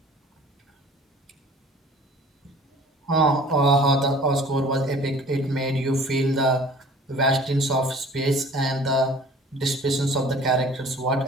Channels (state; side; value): normal; both; correlation 0.48